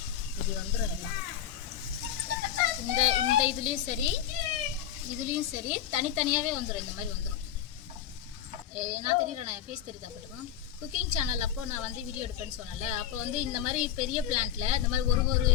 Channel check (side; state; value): right; quieter; 10.4 dB